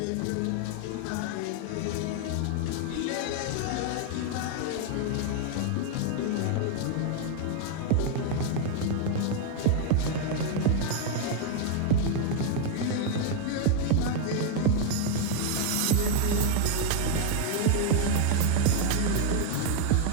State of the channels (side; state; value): both; different; correlation 0.00